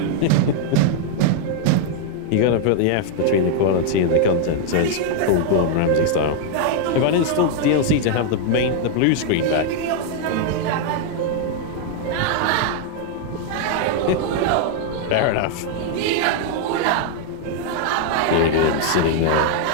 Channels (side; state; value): both; different; correlation 0.00